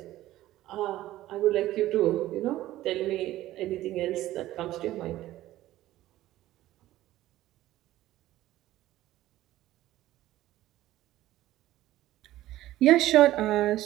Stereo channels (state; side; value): quieter; left; 15.0 dB